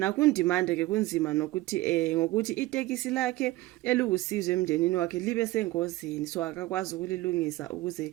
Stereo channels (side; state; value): left; quieter; 18.3 dB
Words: ke kunzima nokuthi ngokuthi itekisi lakhe elukusizwe emndenini wakhe libe sengozini, so akakwazi ukulilungisa ukuze